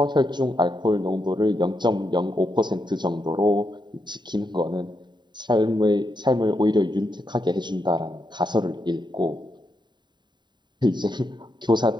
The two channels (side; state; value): left; late; 0.22 ms